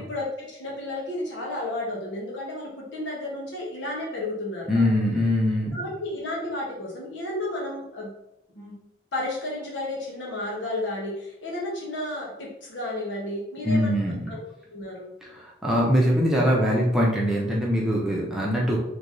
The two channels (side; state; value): both; normal; correlation 0.64